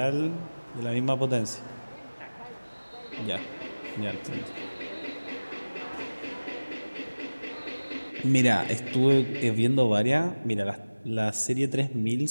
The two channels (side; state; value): both; inverted; correlation -1.00